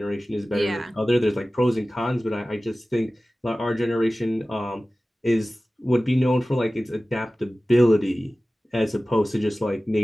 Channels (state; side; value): normal; both; correlation 0.97